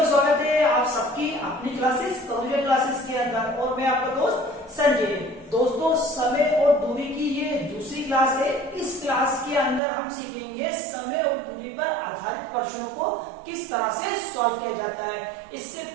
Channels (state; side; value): drops out; left; at 9.8 s